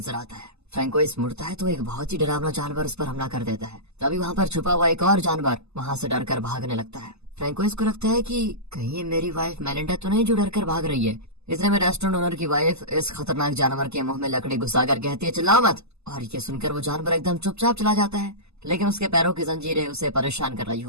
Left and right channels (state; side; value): late; left; 0.80 ms